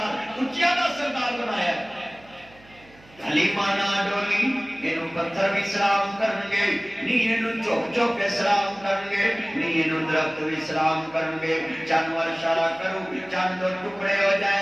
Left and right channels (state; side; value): noise; right; hum, 26 dB below the sound